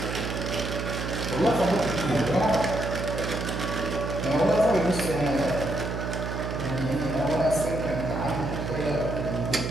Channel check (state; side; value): noise; right; hum, 4 dB below the sound